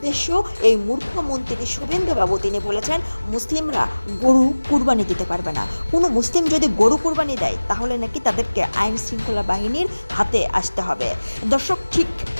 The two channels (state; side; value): inverted; both; correlation -1.00